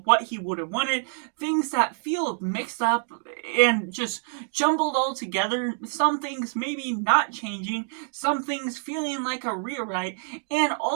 what he would have wanted, things that feel mixed up and just jumbled all together, some things maybe not changing, some things feeling like a rewrite, and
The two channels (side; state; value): left; silent; digital silence